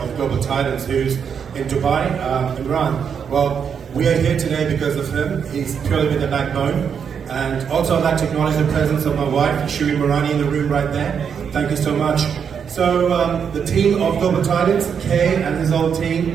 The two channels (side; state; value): left; quieter; 7.1 dB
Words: Global Titans, who's in Dubai, Imran. Well, we are here today because of him. He's purely been the backbone. And also I'd like to acknowledge the presence of my wife, Shiri Marani, in the room right there. Thank you so much. So the team of Global Titans, Kay and his whole